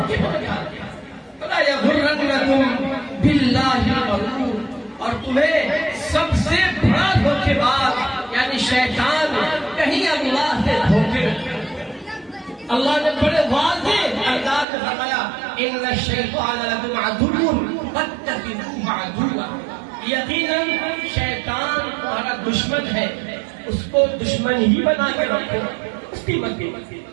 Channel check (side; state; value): left; drops out; at 14.7 s